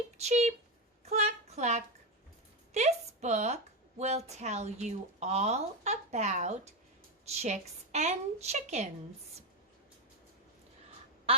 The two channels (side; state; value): both; normal; correlation 0.10